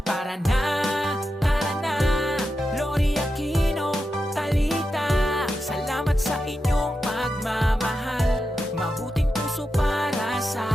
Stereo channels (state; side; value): normal; both; correlation 0.89